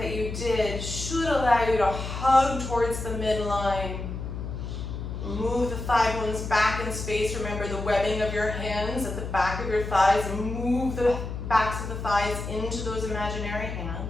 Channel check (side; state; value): left; noise; hum, 6 dB below the sound